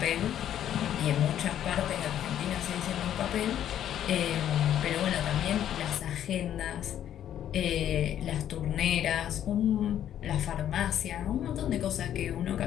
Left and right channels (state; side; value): quieter; right; 10.7 dB